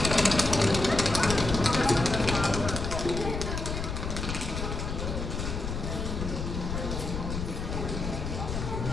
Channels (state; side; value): noise; left; rumble, 4 dB below the sound